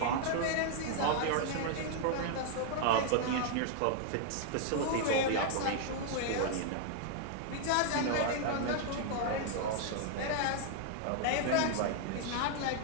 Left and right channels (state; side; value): different; both; correlation 0.00